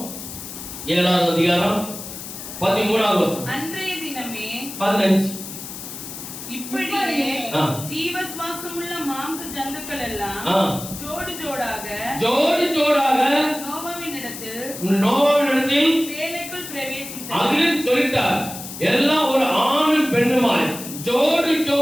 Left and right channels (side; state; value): left; noise; hiss, 10 dB below the sound